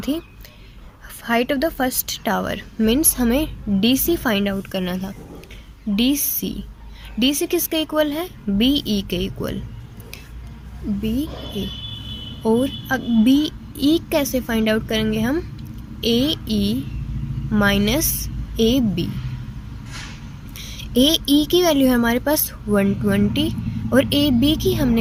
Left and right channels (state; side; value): identical; both; correlation 1.00